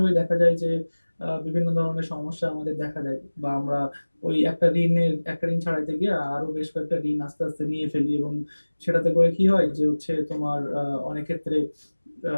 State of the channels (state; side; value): inverted; both; correlation -1.00